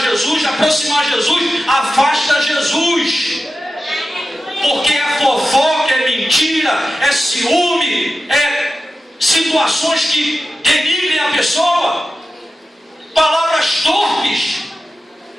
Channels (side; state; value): both; normal; correlation 0.92